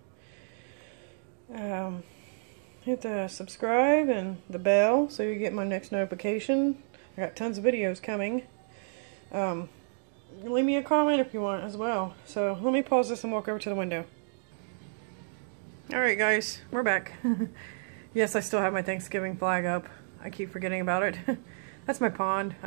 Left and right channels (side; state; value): left; silent; digital silence